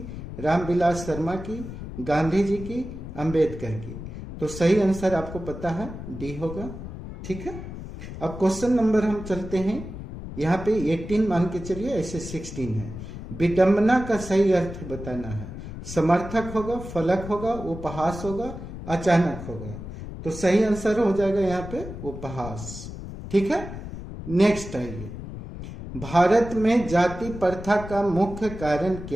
रामविलास शर्मा की, गांधी जी की, अंबेडकर की। तो सही आंसर आपको पता है डी होगा। ठीक है, अब क्वेश्चन नंबर हम चलते हैं, यहाँ पे 18 मान के चलिए, ऐसे 16 है। विडंबना का सही अर्थ बताना है। समर्थक होगा, फलक होगा, उपहास होगा, अचानक होगा। तो सही आंसर हो जाएगा यहाँ पे उपहास। ठीक है, नेक्स्ट आइए, भारत में जाति प्रथा का मुख्य कारण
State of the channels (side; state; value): left; noise; rumble, 10 dB below the sound